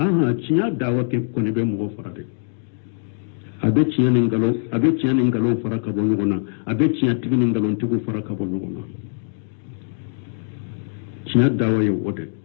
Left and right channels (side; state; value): right; silent; digital silence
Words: ciya dawa ke ko ne be mo farade abe tiyanin galo fara ka bo nyogona abe tiya tiginin galon tigu fara ka bo nyogona tiya dawa yo wode